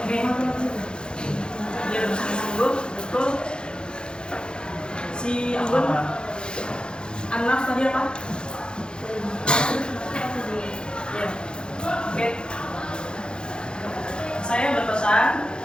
Dia bersungguh-sungguh, betul. Si Ambon, Anas tadi apa?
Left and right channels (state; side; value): late; right; 0.049 ms